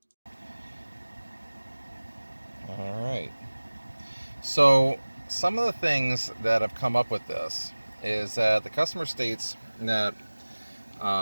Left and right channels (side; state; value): both; inverted; correlation -1.00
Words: All right. So some of the things that have come up with this is that the customer states that